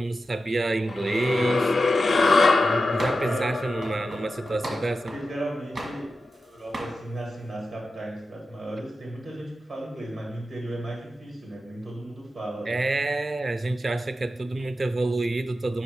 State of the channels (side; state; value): both; normal; correlation 0.91